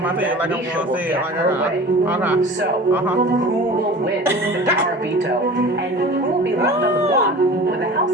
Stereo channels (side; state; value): both; normal; correlation 0.39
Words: my head like I'm gonna say it. Okay. So, who will win the power veto? And who will be left on the block when the